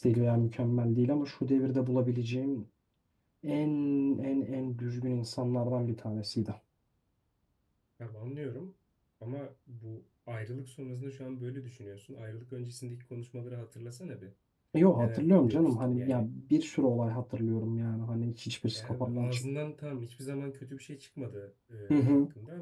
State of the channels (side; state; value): both; identical; correlation 1.00